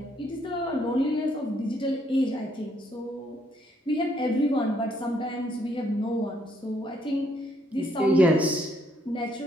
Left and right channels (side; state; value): both; normal; correlation 0.70